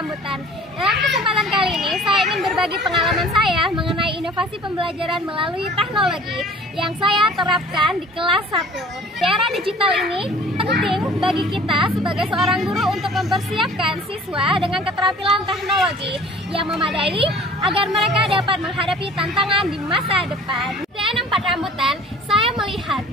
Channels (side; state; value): both; normal; correlation 0.48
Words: Dalam kesempatan kali ini, saya ingin berbagi pengalaman saya mengenai inovasi pembelajaran melalui teknologi yang saya terapkan di kelas 1. Di era digital ini, penting bagi kita sebagai seorang guru untuk mempersiapkan siswa dengan keterampilan teknologi yang memadai agar mereka dapat menghadapi tantangan di masa depan. Di SDN 4 Rambutan, saya melihat